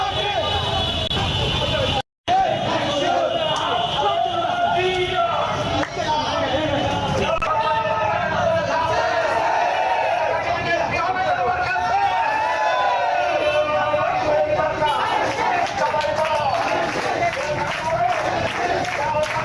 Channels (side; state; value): both; identical; correlation 1.00